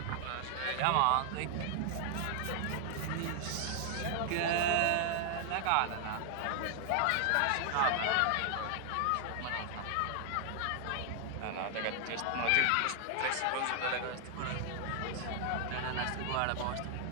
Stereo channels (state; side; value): different; both; correlation 0.00